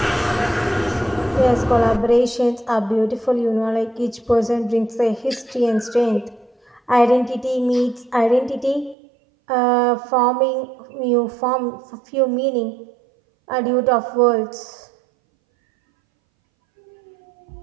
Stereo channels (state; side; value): drops out; left; at 9.0 s